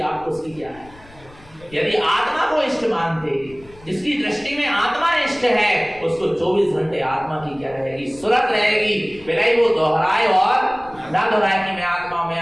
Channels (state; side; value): noise; left; rumble, 24 dB below the sound